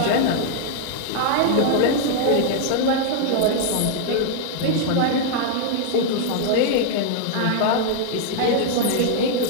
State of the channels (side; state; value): both; different; correlation -0.01